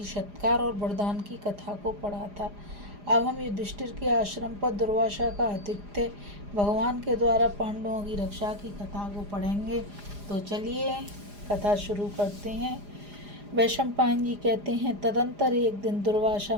सत्कार और वरदान की कथा को पढ़ा था। अब हम युधिष्ठिर के आश्रम पर दुर्वासा का आतिथ्य भगवान के द्वारा पांडवों की रक्षा की कथा को पढ़ेंगे। तो चलिए कथा शुरू करते हैं। वैशंपायन जी कहते हैं, तदंतर एक दिन दुर्वासा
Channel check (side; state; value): left; late; 4.9 ms